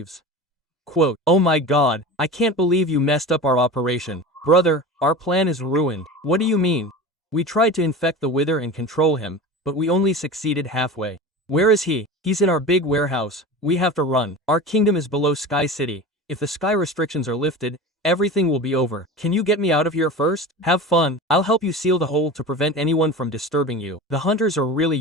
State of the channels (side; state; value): both; normal; correlation 0.32